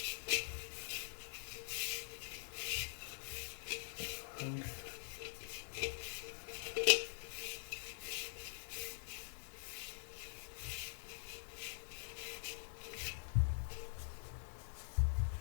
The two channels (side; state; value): right; silent; digital silence